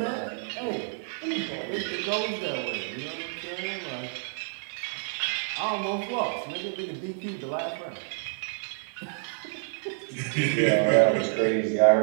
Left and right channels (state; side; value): silent; left; digital silence